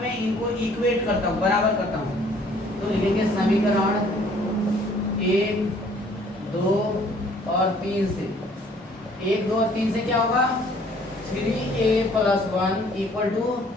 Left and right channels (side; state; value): both; normal; correlation 0.58